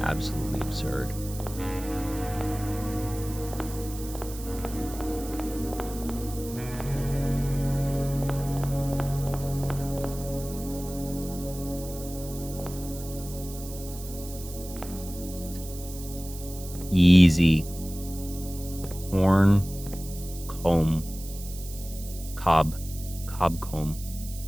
Absolutely absurd. Easy. Horn, comb, cob comb.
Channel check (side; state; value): right; noise; hiss, 14 dB below the sound